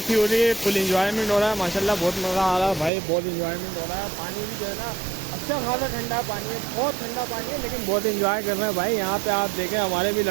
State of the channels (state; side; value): drops out; left; at 2.9 s